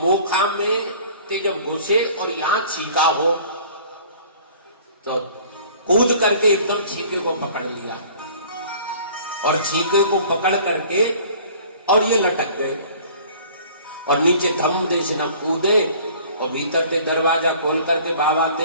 मोखा में ते जब घुसे और यहाँ छीका हो तो कूद करके एकदम छीके को पकड़ लिया और छीके को पकड़ करके और ये लटक गए और नीचे धम दे से न कूदे और भीतर से दरवाजा खोल करके बाबा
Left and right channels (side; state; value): both; inverted; correlation -0.49